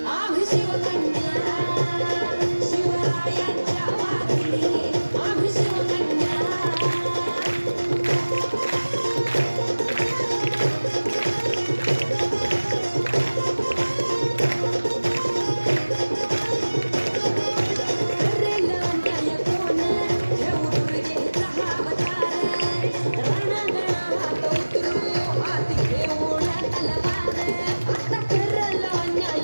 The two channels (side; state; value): both; inverted; correlation -1.00